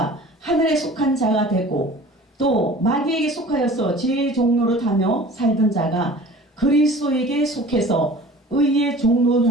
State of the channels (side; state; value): both; normal; correlation 0.44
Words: 하늘에 속한 자가 되고, 또 마귀에게 속하여서 죄의 종로를 타며 살던 자가 그리스도에게 속해서 의의 종로를